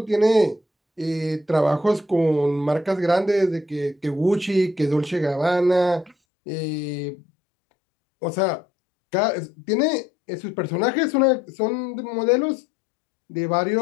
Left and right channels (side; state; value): right; drops out; at 6.2 s